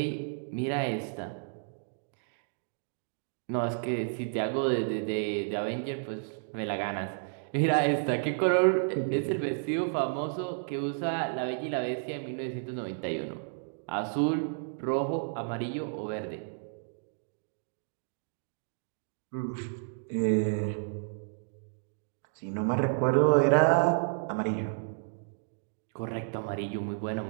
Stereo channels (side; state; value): left; silent; digital silence